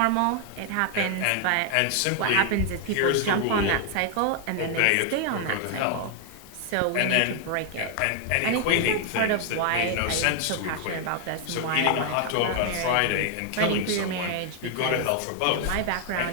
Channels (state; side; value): different; both; correlation 0.00